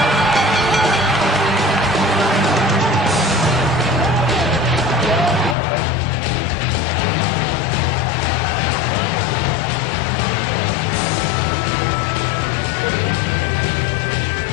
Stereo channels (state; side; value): drops out; right; at 5.6 s